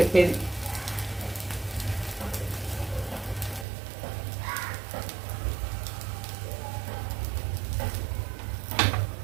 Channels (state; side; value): drops out; left; at 3.7 s